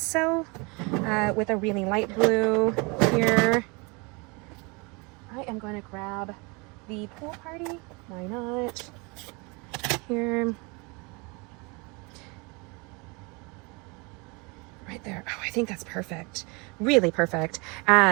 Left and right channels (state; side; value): quieter; left; 28.7 dB